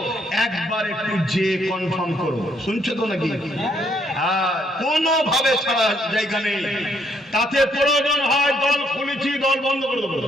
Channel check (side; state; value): both; normal; correlation 0.70